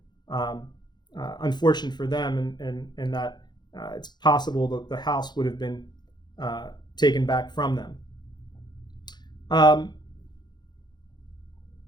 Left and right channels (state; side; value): late; right; 0.21 ms